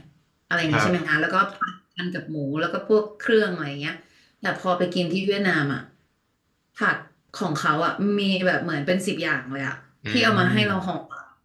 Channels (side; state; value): both; identical; correlation 1.00